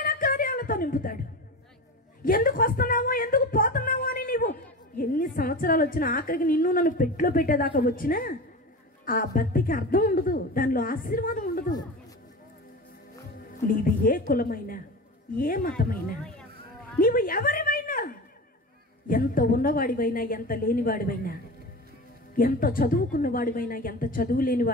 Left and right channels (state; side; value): normal; both; correlation 0.29